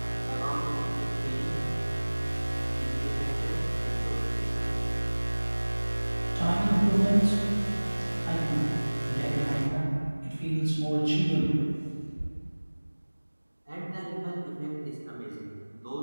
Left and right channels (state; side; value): inverted; both; correlation -1.00